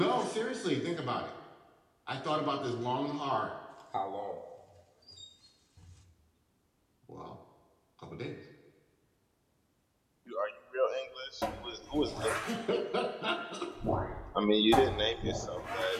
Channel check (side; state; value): both; identical; correlation 1.00